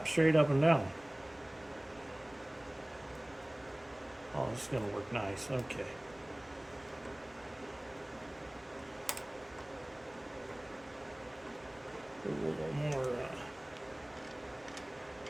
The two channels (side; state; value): right; noise; rumble, 28 dB below the sound